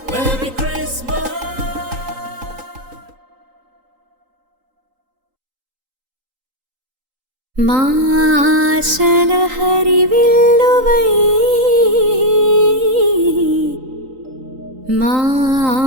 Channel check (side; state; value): left; late; 3.8 ms